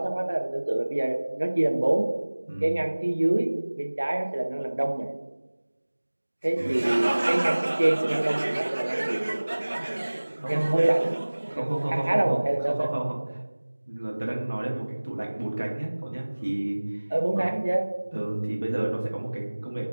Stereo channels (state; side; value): inverted; both; correlation -1.00